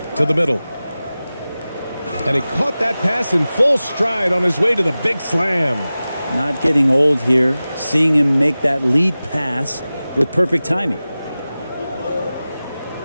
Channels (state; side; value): inverted; both; correlation -0.96